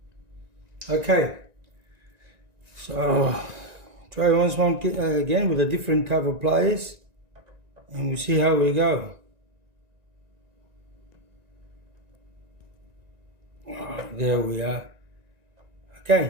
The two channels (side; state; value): left; late; 1.9 ms